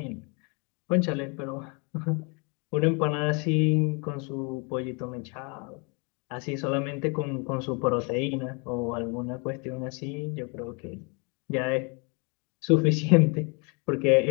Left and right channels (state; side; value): quieter; right; 33.1 dB